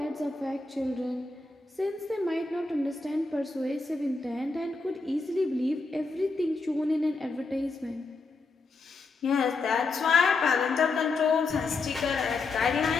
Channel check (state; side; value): quieter; right; 3.8 dB